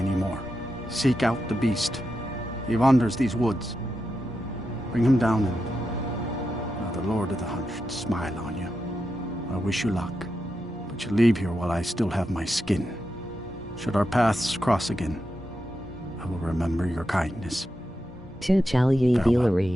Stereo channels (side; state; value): both; normal; correlation 0.87